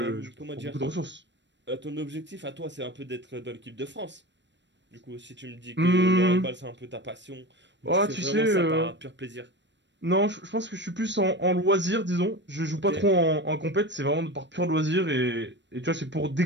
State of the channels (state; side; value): late; left; 0.53 ms